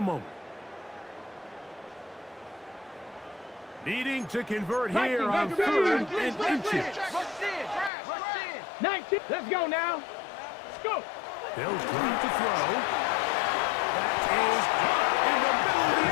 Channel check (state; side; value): drops out; right; at 7.9 s